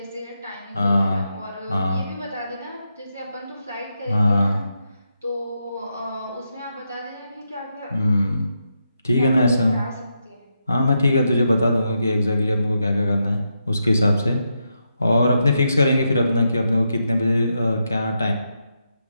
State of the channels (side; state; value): both; inverted; correlation -0.84